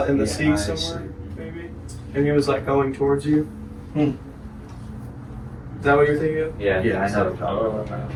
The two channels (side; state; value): both; identical; correlation 1.00